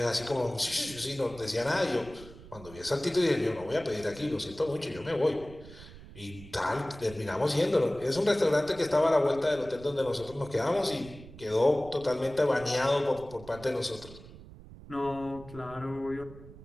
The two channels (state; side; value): noise; right; rumble, 17 dB below the sound